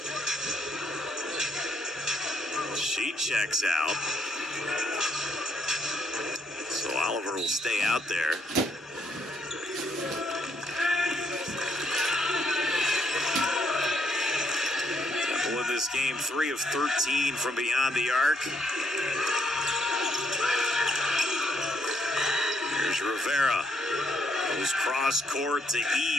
She checks out. So Oliver will stay out there. Temple in this game, 3 of 13 from beyond the arc. Here's Rivera. Goes cross court to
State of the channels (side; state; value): both; normal; correlation 0.74